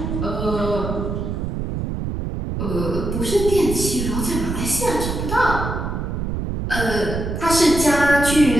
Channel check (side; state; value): right; noise; rumble, 3 dB below the sound